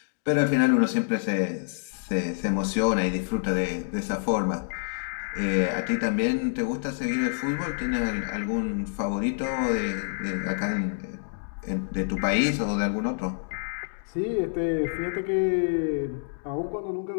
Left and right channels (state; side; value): silent; right; digital silence